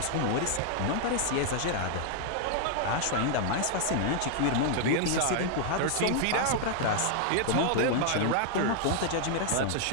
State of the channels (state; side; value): different; both; correlation 0.00